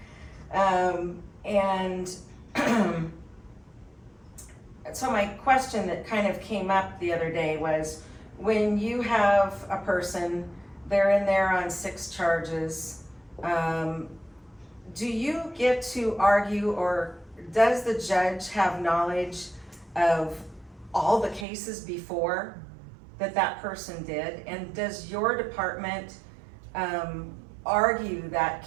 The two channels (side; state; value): left; drops out; at 21.5 s